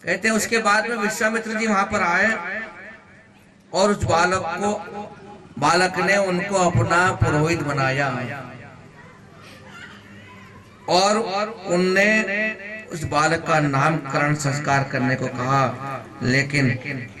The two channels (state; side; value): identical; both; correlation 1.00